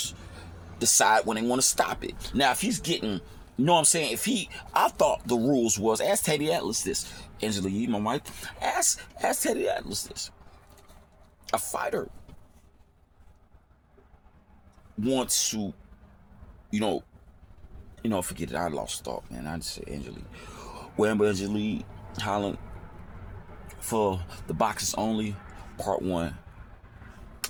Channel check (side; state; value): both; identical; correlation 1.00